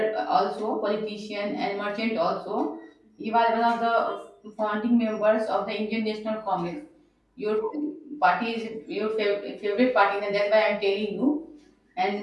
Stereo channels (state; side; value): identical; both; correlation 1.00